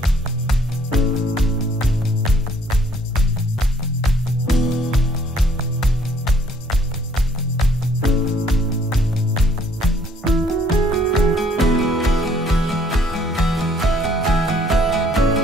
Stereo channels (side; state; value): both; normal; correlation 0.62